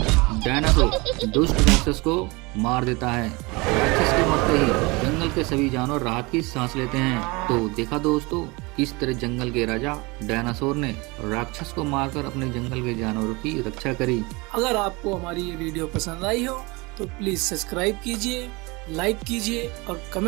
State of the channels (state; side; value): quieter; left; 25.5 dB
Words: डायनासोर दुष्ट राक्षस को मार देता है। राक्षस के मरते ही जंगल के सभी जानवर राहत की सांस लेते हैं। तो देखा दोस्तों, किस तरह जंगल के राजा डायनासोर ने राक्षस को मारकर अपने जंगल के जानवरों की रक्षा करी। अगर आपको हमारी ये वीडियो पसंद आई हो तो प्लीज सब्सक्राइब कीजिए, लाइक कीजिए और